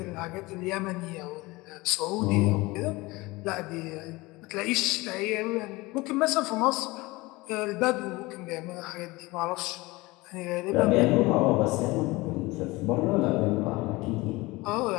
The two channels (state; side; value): quieter; right; 21.9 dB